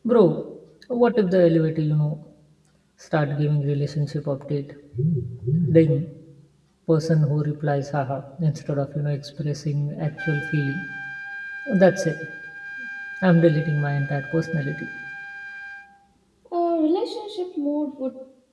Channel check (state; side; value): identical; both; correlation 1.00